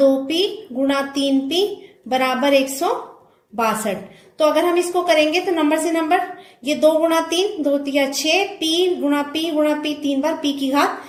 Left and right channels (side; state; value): both; identical; correlation 1.00